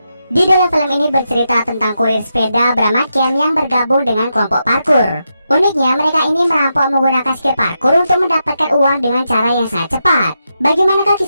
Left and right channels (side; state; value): both; inverted; correlation -0.85